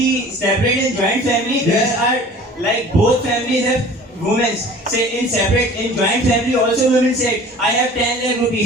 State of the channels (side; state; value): both; normal; correlation 0.45